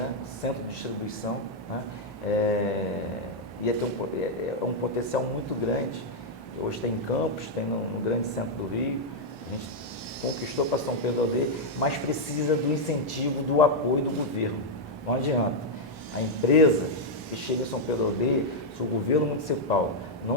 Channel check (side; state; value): both; normal; correlation -0.03